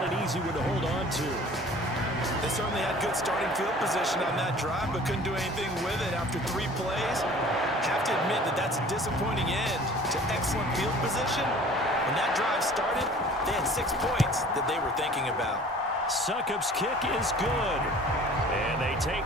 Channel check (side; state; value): both; normal; correlation 0.47